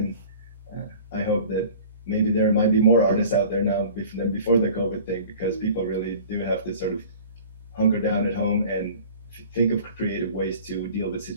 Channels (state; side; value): inverted; both; correlation -0.44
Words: I hope that maybe there might be more artists out there now than before the COVID thing, because people really do have to sort of hunker down at home and think of creative ways to deal with